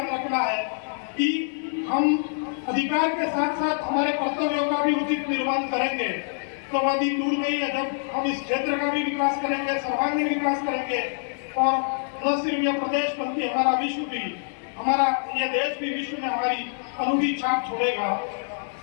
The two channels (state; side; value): silent; right; digital silence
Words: रखना है कि हम अधिकार के साथ साथ हमारे कर्तव्यों का भी उचित निर्वहन करेंगे तो वह दिन दूर नहीं है जब हम इस क्षेत्र का भी विकास करेंगे, सर्वांगीण विकास करेंगे और न सिर्फ यह प्रदेश बल्कि हमारा विश्व भी, हमारा यह देश भी विश्व में हमारी अनूठी छाप छोड़ेगा।